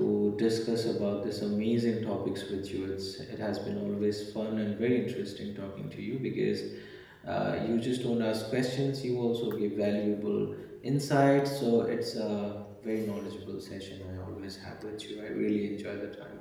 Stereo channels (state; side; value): identical; both; correlation 1.00